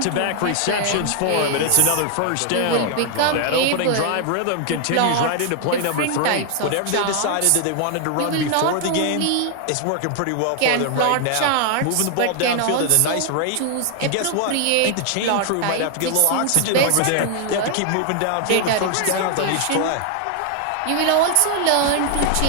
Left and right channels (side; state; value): both; different; correlation 0.00